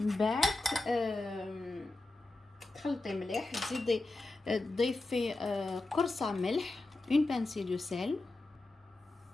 بعد تخلطي مليح، تزيدي تضيفي قرصه ملح، une pincée de sel.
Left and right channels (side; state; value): right; quieter; 3.0 dB